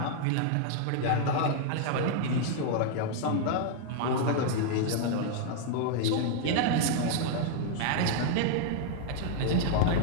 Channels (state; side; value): different; both; correlation -0.01